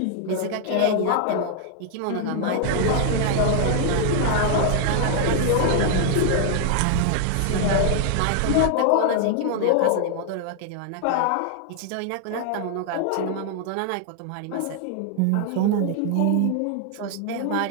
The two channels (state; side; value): different; both; correlation 0.00